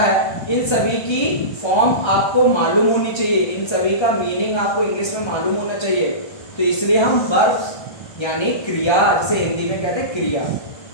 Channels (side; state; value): right; late; 1.3 ms